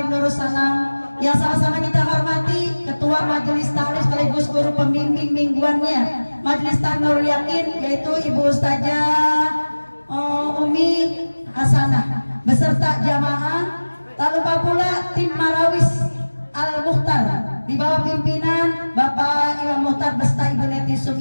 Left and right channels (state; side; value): inverted; both; correlation -1.00